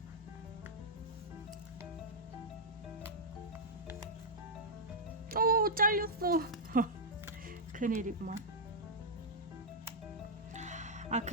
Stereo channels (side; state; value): both; normal; correlation -0.08